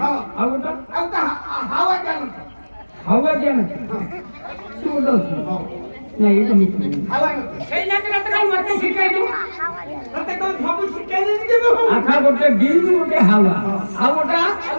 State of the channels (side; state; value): both; inverted; correlation -1.00